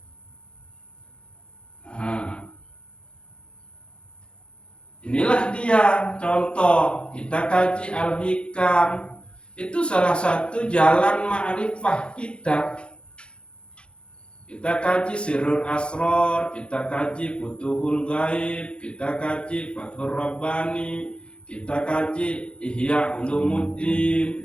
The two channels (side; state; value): right; late; 0.056 ms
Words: Nah, inilah dia contoh. Kita kaji Al-Hikam. Itu salah satu jalan ma'rifah kita. Kita kaji Sirrul Asrar, kita kaji Futuhul Ghaib, kita kaji Fathur Rabbani, kita kaji Ihya